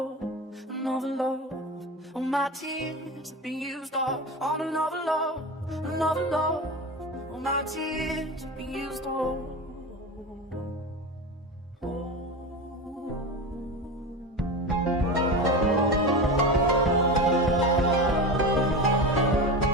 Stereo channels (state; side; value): normal; both; correlation 0.25